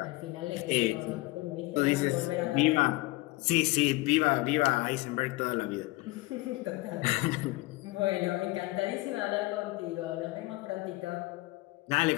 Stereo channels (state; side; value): quieter; right; 21.1 dB